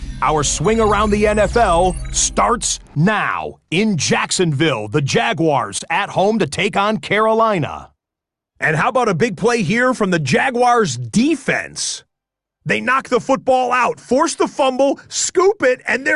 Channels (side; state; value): both; identical; correlation 1.00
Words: Our swing around the NFL starts now. In Jacksonville, the Jaguars at home to take on Carolina. And how about a big play here from the Jaguars' defense? They knock the football out, force the fumble, scoop it, and